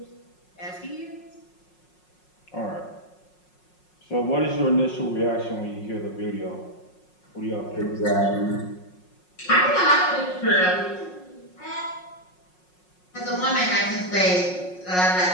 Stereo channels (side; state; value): right; late; 5.5 ms